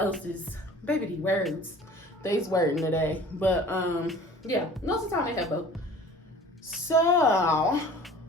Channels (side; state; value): both; normal; correlation 0.46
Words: Baby, these words. They's wording today. But yeah, most of the time they have both. So,